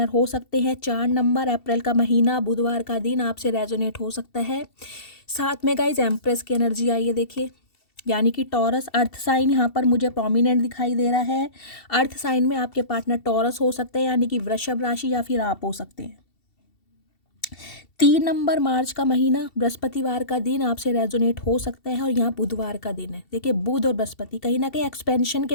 हो सकते हैं। 4 नंबर, अप्रैल का महीना, बुधवार का दिन आपसे रेजोनेट हो सकता है। साथ में गाइज एम्प्रेस की एनर्जी आई है, देखिए, यानी कि टॉरस अर्थ साइन यहाँ पर मुझे प्रोमिनेंट दिखाई दे रहा है। अर्थ साइन में आपके पार्टनर टॉरस हो सकते हैं, यानी कि वृषभ राशि, या फिर आप हो सकते हैं। 3 नंबर, मार्च का महीना, बृहस्पतिवार का दिन आपसे रेजोनेट हो सकता है, और यहाँ बुधवार का दिन है। देखिए, बुध और बृहस्पति कहीं ना कहीं एक्सपेंशन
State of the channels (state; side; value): late; right; 2.7 ms